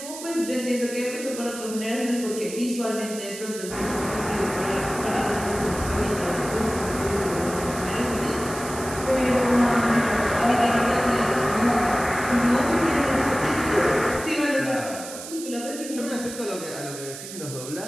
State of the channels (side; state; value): right; noise; hiss, 11 dB below the sound